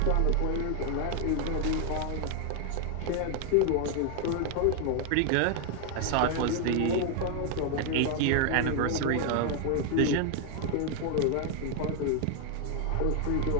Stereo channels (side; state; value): both; different; correlation 0.00